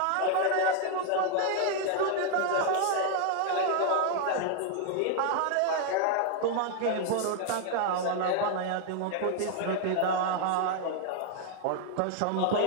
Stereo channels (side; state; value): both; different; correlation 0.00